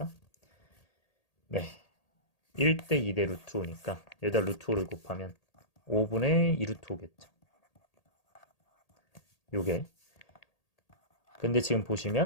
네. 1대 2대 루트 5니까 여기다 루트 5를 곱하면 5분의 2 루트 5겠죠. 요게. 근데 지금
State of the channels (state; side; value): late; right; 1.8 ms